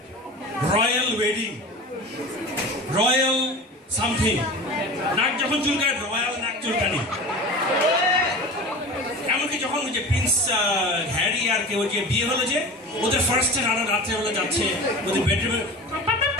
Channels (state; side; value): normal; both; correlation 0.34